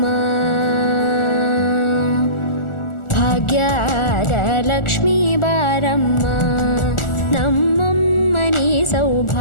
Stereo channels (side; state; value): right; late; 1.4 ms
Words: ಭಾಗ್ಯದ ಲಕ್ಷ್ಮೀ ಬಾರಮ್ಮ, ನಮ್ಮಮ್ಮನಿ